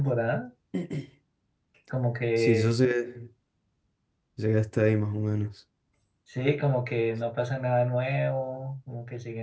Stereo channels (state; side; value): identical; both; correlation 1.00